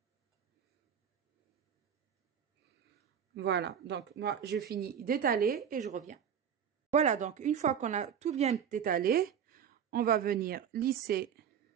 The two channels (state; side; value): quieter; left; 8.2 dB